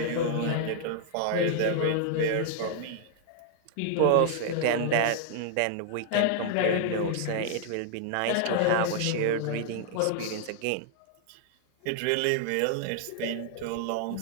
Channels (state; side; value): different; both; correlation 0.00